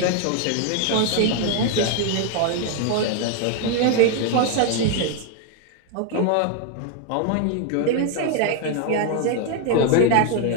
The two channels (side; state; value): both; different; correlation 0.01